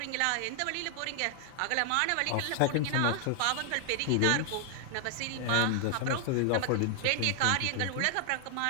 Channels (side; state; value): both; different; correlation 0.00